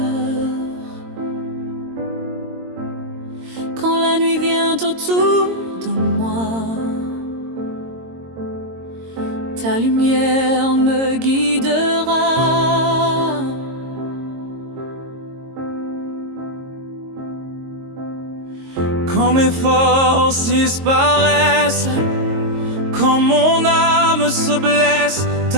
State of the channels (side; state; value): left; late; 22 ms